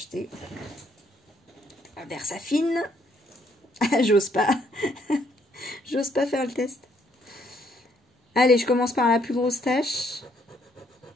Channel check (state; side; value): normal; both; correlation 0.69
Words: Versafine. J'ose pas. J'ose pas faire le test. Allez, je commence par la plus grosse tâche.